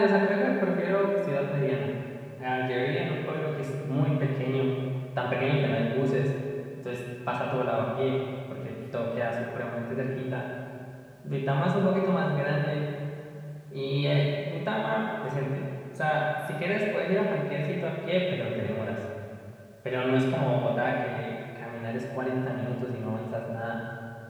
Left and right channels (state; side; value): identical; both; correlation 1.00